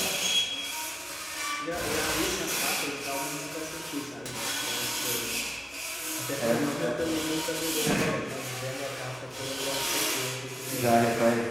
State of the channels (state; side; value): normal; both; correlation 0.98